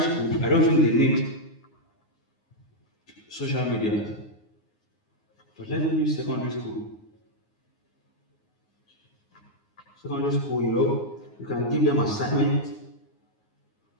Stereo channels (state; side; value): late; right; 9.6 ms